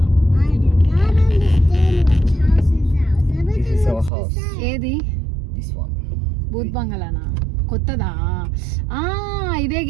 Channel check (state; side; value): drops out; left; at 4.1 s